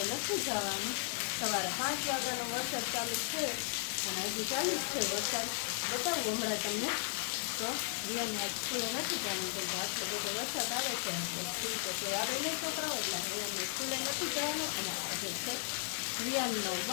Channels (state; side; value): silent; right; 54 dB below the other